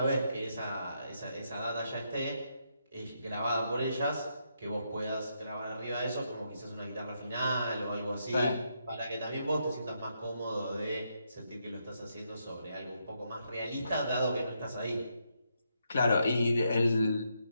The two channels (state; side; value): inverted; both; correlation -0.79